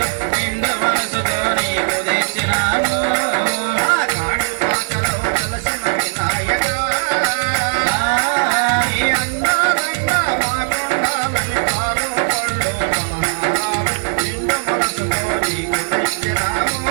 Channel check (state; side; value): silent; left; digital silence